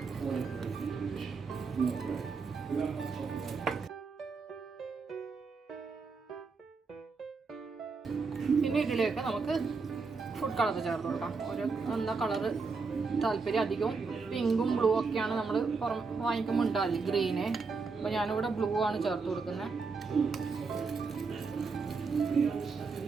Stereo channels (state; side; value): quieter; left; 4.6 dB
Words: പിന്നെ ഇതിലേക്ക് നമുക്ക് ഫുഡ് കളർ ചേർത്ത് കൊടുക്കാം. ഒരു എന്താ കളറ് താല്പര്യം, അധികവും പിങ്കും ബ്ലൂ ഒക്കെയാണ് നമ്മൾ വാങ്ങിക്കുമ്പോൾ ഉണ്ടാവില്ല, ഗ്രീന്. അപ്പോൾ ഞാനിവിടെ ബ്ലൂ ആണ് ചേർത്ത് കൊടുക്കുന്നത്.